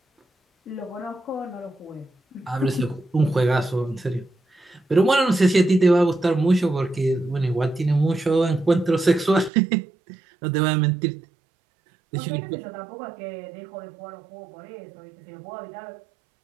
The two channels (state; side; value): drops out; left; at 9.5 s